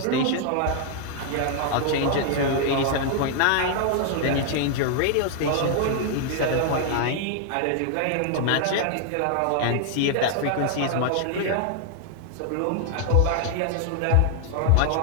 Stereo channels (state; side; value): different; both; correlation 0.00